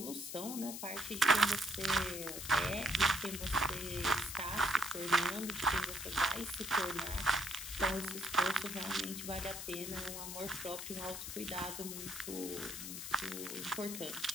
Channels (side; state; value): left; noise; hiss, 7 dB below the sound